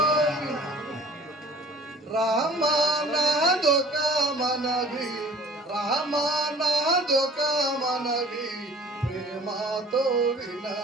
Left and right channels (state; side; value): normal; both; correlation 0.50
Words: రామానాదొక మనవి రామానాదొక మనవి ప్రేమతో